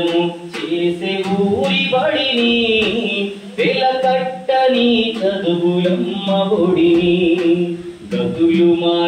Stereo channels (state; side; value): identical; both; correlation 1.00